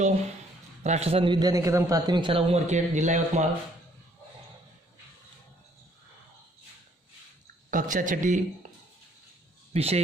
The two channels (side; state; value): both; normal; correlation 0.64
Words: राष्ट्रसंत विद्या निकेतन प्राथमिक शाला उमरखेड, जिला यवतमाळ, कक्षा छठी, विषय